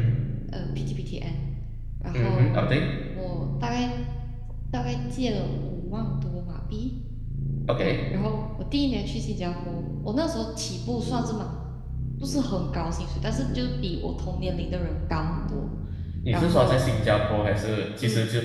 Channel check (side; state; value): both; identical; correlation 1.00